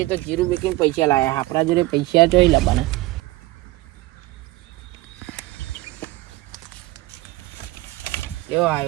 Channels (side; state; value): left; quieter; 19.5 dB